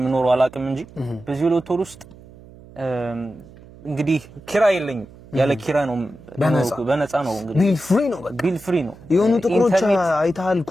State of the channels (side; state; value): right; noise; hum, 21 dB below the sound